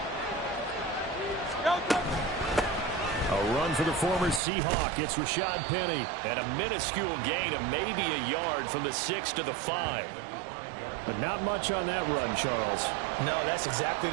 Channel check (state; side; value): drops out; left; at 4.4 s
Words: A run for the former Seahawk. It's Rashad Penny. And a minuscule gain of maybe a yard from the 6 to the 5. But not much on that run, Charles. No, that's exactly